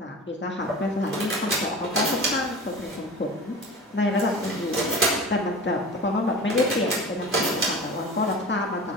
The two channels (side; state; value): both; normal; correlation 0.34